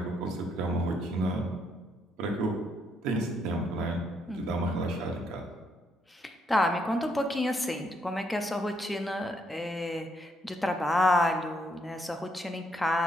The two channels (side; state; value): both; normal; correlation 0.74